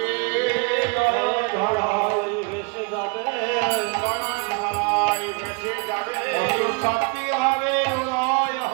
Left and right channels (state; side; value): quieter; left; 32.1 dB